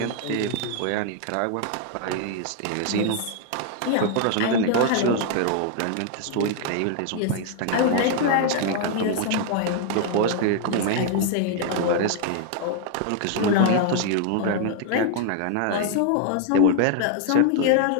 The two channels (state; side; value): different; both; correlation 0.00